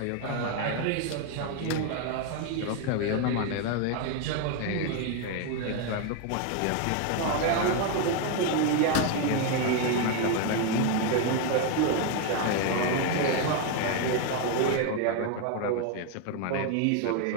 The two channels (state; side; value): different; both; correlation 0.01